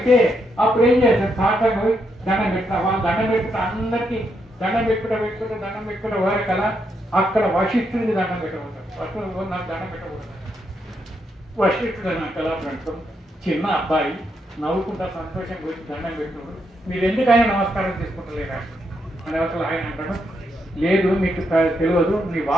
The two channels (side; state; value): both; normal; correlation 0.79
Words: అప్పుడు ఏం చేస్తారు సాక్షంగా పోయి దండం పెట్టిన వాళ్ళు దండం పెట్టుకుంటే అందరికీ దండం పెట్టుకుంటే వారి కల అక్కడ వశిష్ఠుడికి దండం పెట్టబోతాడు. నాకు దండం పెట్టకూడదు. వశిష్ఠుడు నా కళ పెడతాం. చిన్న అబ్బాయి నవ్వుకుంటా సంతోషం గురించి దండం పెట్టుకున్నాడు. మీరు ఎందుకైనా నమస్కారం తీసుకుంటలేరా అని అవసరం ఆయన అంటాడు. లేదు మీకు తెలియదు నీ